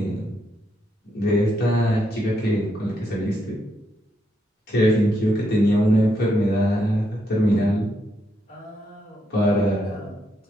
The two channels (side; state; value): both; normal; correlation 0.78